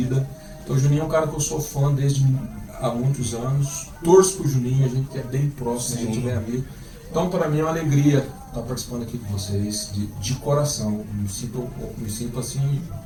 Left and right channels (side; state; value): both; identical; correlation 1.00